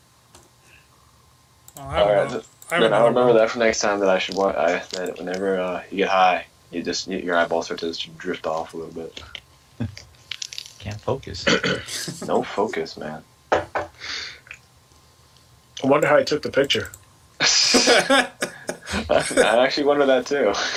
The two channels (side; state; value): both; identical; correlation 1.00